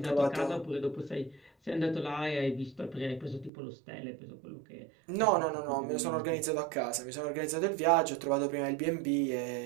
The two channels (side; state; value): left; drops out; at 3.5 s